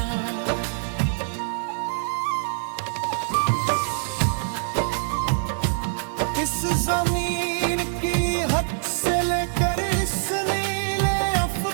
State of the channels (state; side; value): silent; left; 62 dB below the other